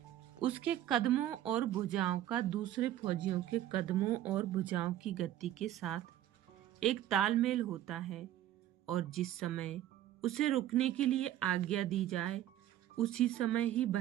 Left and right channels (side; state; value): left; quieter; 12.6 dB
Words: उसके कदमों और भुजाओं का दूसरे फौजियों के कदमों और भुजाओं की गति के साथ एक तालमेल होता है और जिस समय उसे रुकने के लिए आज्ञा दी जाए उसी समय ही